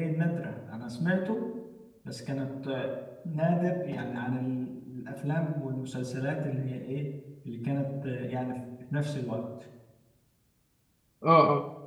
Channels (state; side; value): identical; both; correlation 1.00